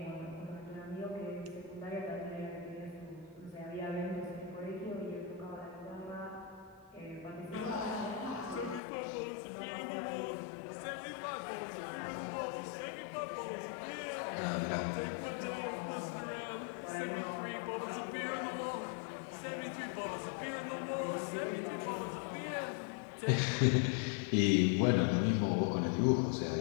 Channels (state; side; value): drops out; right; at 8.8 s